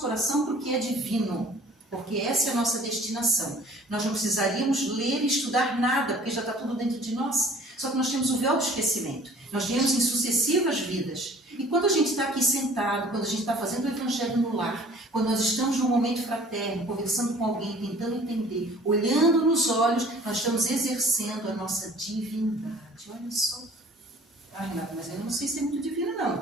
coração para o que é divino, porque essa é a nossa destinação. Nós não precisaríamos ler e estudar nada, porque já está tudo dentro de nós. Só que nós temos o véu do esquecimento. Nós viemos em sucessivas vidas. E quando a gente está aqui sentado, quando a gente está fazendo o Evangelho no lar, quando nós estamos num momento fraterno, conversando com alguém, tentando entender, olhando nos olhos, nós estamos exercendo a nossa divindade. Olha só. Ah, Renata, mas eu não sei ser muito divina, não.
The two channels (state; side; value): normal; both; correlation 0.51